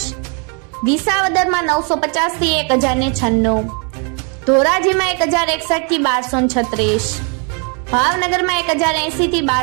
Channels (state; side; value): quieter; left; 37.1 dB